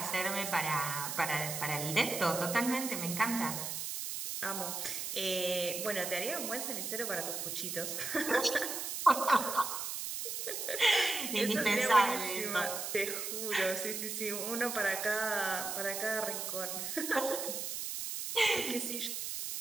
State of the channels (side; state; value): right; noise; hiss, 4 dB below the sound